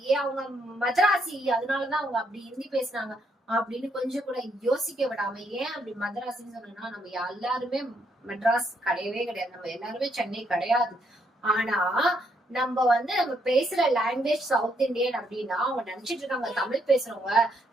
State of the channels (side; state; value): both; normal; correlation 0.74